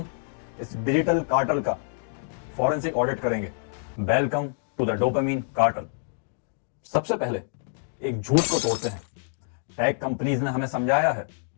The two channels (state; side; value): silent; right; digital silence